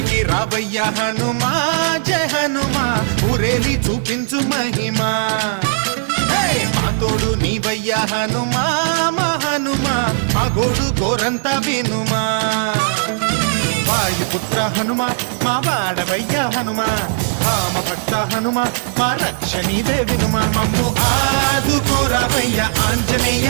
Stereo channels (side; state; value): left; silent; digital silence